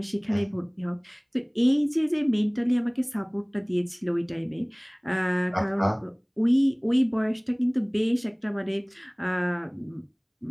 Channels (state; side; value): identical; both; correlation 1.00